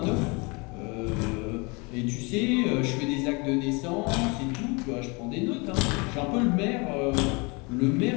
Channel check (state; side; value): quieter; right; 28.9 dB